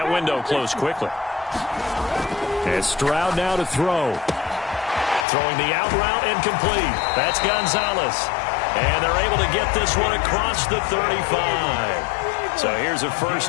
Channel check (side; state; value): right; drops out; at 5.2 s